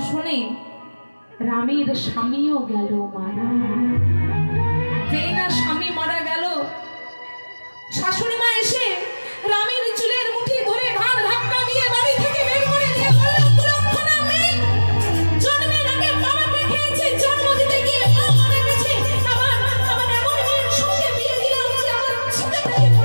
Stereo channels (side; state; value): both; inverted; correlation -1.00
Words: রামের স্বামীও গেল মারা। যেই না স্বামী মারা গেল, শাশুড়ি মা এসে রামের চুলের মুঠি ধরে ঘাড় ধাক্কা দিয়ে বাড়ি থেকে বের করে দিয়ে বলল, কুলক্ষণা মেয়ে, জন্মের আগে বাবাকে খেয়েছে, জন্ম দিতে গিয়ে মা মারা গেছে, আমার এমন মেয়ের সঙ্গে বিয়ে দিলাম যে আমার ছেলেটাকে